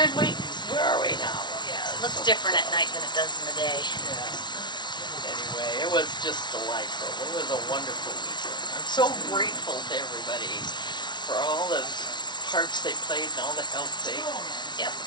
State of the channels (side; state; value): right; late; 0.21 ms